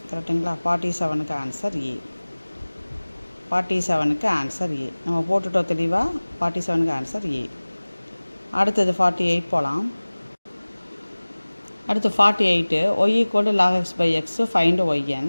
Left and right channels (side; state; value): both; inverted; correlation -1.00